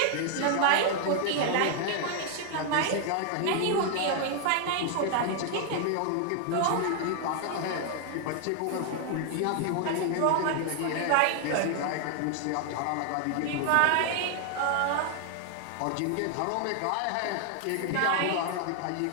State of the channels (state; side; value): different; both; correlation 0.00